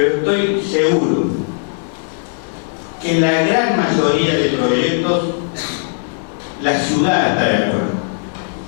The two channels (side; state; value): right; silent; digital silence